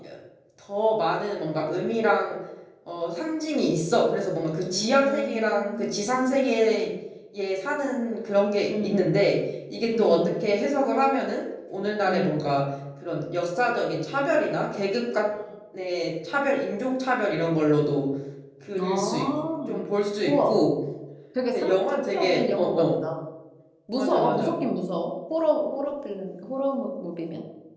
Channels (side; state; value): both; identical; correlation 1.00